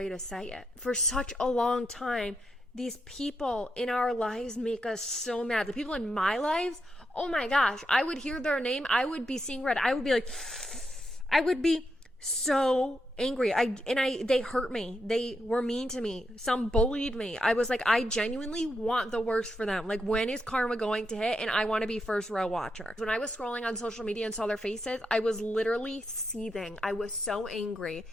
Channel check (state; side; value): normal; both; correlation 0.83